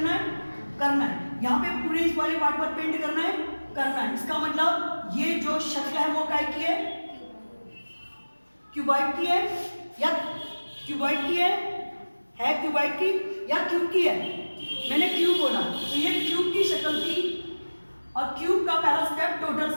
करना है, यहाँ पे पूरे इस वाले पार्ट पर पेंट करना है। इसका मतलब ये जो शक्ल है वो काय की है? क्यूबॉइड की है या क्यूबॉइड की है क्यूबॉइड की या क्यूब की है? मैंने क्यूब बोला, तो ये क्यूब की शक्ल थी और क्यूब का पहला स्टेप टोटल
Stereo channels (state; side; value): inverted; both; correlation -1.00